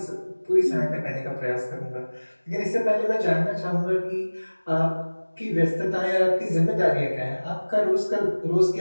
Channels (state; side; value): inverted; both; correlation -1.00